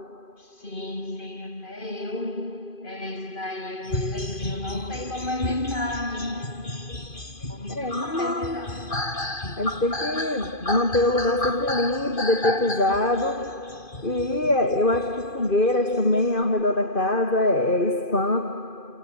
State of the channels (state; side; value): late; right; 2.5 ms